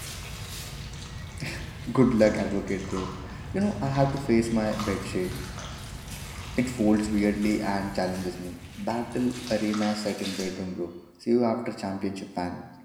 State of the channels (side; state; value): both; identical; correlation 1.00